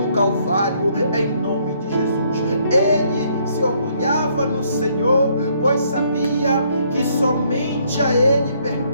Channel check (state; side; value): inverted; both; correlation -0.68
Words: Calvário, em nome de Jesus. Ele se orgulhava no Senhor, pois sabia que somente a Ele